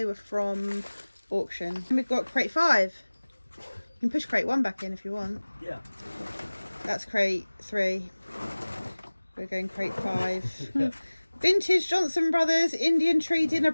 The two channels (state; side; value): inverted; both; correlation -1.00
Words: were from auction. And we've got crate 5. You can push crate 1 back in if you want. Yeah. That's crate 3. We're going crate 5. Vintage Johnson Brothers Indian Tree dinner